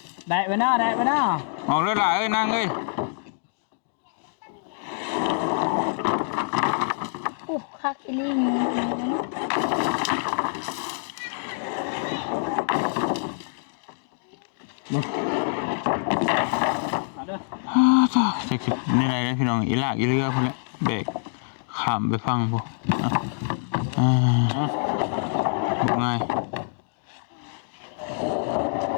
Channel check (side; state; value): right; silent; digital silence